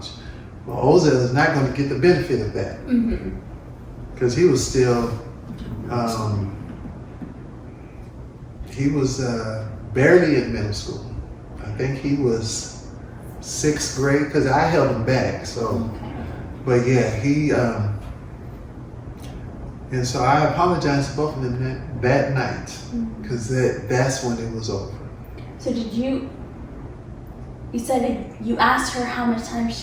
Well, Ozell is not going to get the benefit of that because he was still, he was barely in middle school. I think he was 6th grade because I held him back. So, but yeah, he, and so I apologized to both of them that night because that's when it was over. So did you said you asked her how much time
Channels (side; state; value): both; identical; correlation 1.00